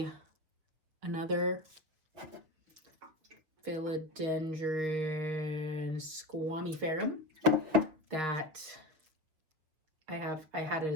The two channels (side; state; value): left; late; 6.6 ms